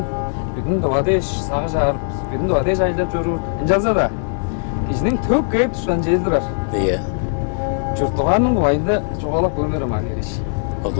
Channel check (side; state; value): right; silent; 61 dB below the other